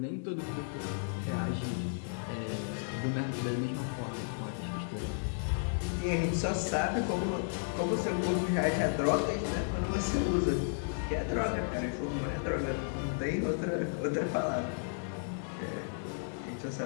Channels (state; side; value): silent; right; 55 dB below the other